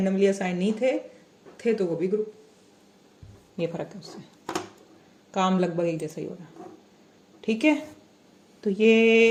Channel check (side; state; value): both; identical; correlation 1.00